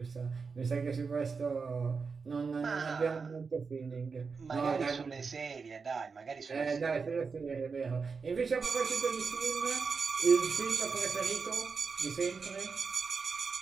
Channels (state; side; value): quieter; left; 5.0 dB